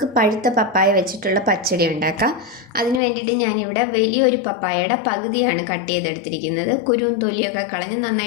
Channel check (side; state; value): right; drops out; at 3.0 s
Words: പഴുത്ത പപ്പായ വെച്ചിട്ടുള്ള പച്ചടി ഉണ്ടാക്കാം. അതിന് വേണ്ടിയിട്ട് ഞാനിവിടെ വലിയൊരു പപ്പായയുടെ പകുതിയാണ് കട്ട് ചെയ്തെടുത്തിരിക്കുന്നത്. കുരുവും തൊലിയൊക്കെ കളഞ്ഞ്